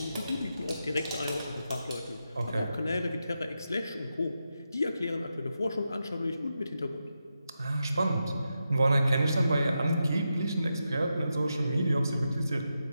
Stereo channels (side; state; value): both; inverted; correlation -0.87